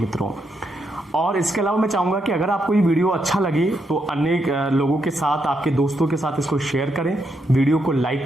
और इसके अलावा मैं चाहूंगा कि अगर आपको ये वीडियो अच्छा लगे तो अन्य लोगों के साथ, आपके दोस्तों के साथ इसको शेयर करें, वीडियो को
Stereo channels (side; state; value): both; normal; correlation 0.80